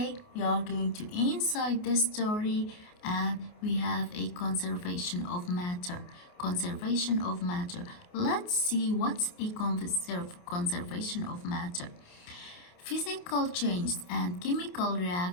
we are going to inside the story and we have a conservation of matter. Conservation of matter. Let's see what's a conservation of matter. Physical changes and chemical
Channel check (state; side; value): late; right; 28 ms